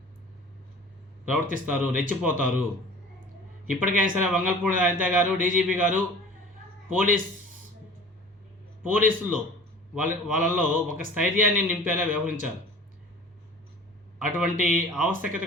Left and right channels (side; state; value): both; normal; correlation 0.43